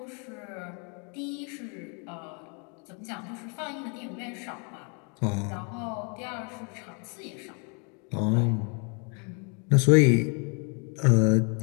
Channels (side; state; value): right; quieter; 36.5 dB